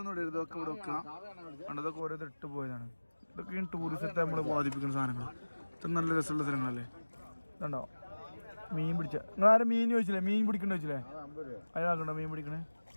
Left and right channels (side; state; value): both; inverted; correlation -1.00